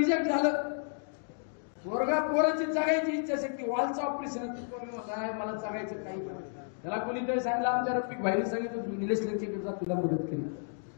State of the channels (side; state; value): right; silent; digital silence